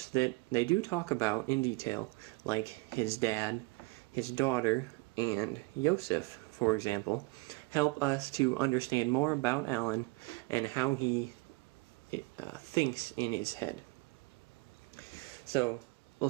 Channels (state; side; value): quieter; left; 26.4 dB